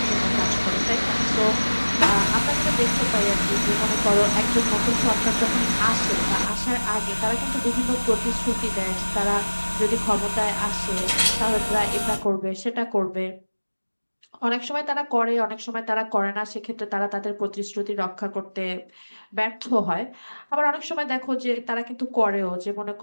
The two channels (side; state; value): both; inverted; correlation -1.00